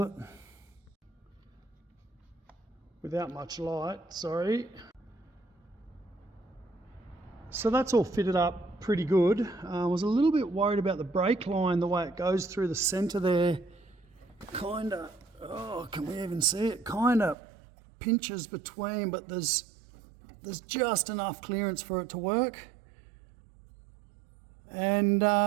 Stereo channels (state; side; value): drops out; left; at 17.4 s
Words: it. Without much light, sorry. So that's all fitted up pretty good. I was a little bit worried about the brake line, the way it goes through the centre there. Kind of, oh, can we even see it? Kind of pinches between, but there's just enough clearance for it to work. And